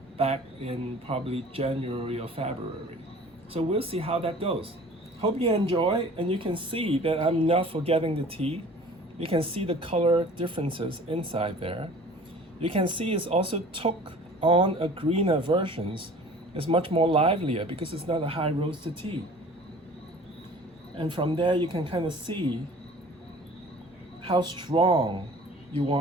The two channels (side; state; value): both; normal; correlation 0.46